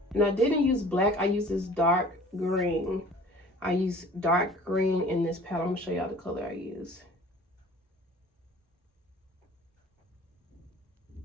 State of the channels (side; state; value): both; normal; correlation 0.47